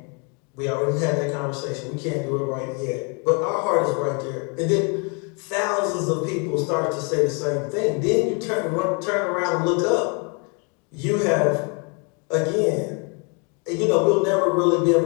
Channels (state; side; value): quieter; right; 35.2 dB